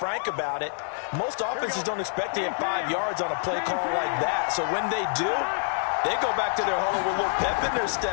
about it, most offenses don't expect to get 5 yards on a play call like that. So when they do, they go back to their huddle with a little pep in their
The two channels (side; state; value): right; silent; digital silence